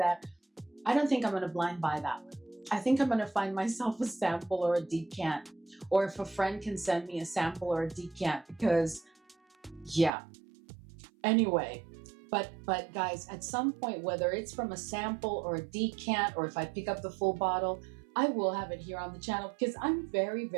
I don't think I'm going to blind buy that one. I think I'm going to find myself a sample or a decant, or if a friend can send me a sample or a decant, because yeah. Anyway, but guys, at some point, whether it's from a sample or a decant, or if I pick up the full bottle, I will have it here on the channel, because I'm very,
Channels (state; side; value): drops out; left; at 10.1 s